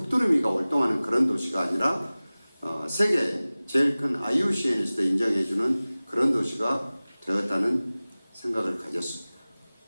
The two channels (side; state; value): both; inverted; correlation -0.98